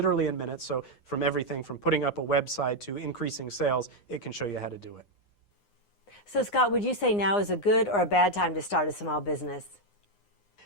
in minutes. So from everything from putting up a website to increasing sales, it can show you how to do it. So Scott, would you say now is a good or a bad time to start a small business?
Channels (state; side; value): late; right; 9.7 ms